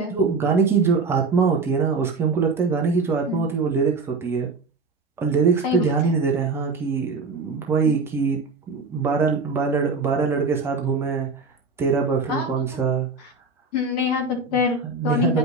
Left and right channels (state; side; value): quieter; left; 3.8 dB